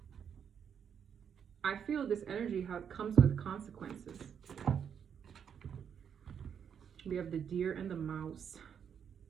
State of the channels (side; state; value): left; quieter; 7.8 dB